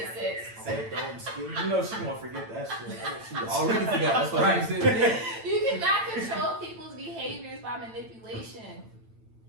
Six. Say it, don't skill. You know she gonna forget that shit. She already forgot. That's what I said. You cannot control people's behaviors by manipulation.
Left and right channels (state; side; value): late; left; 8.9 ms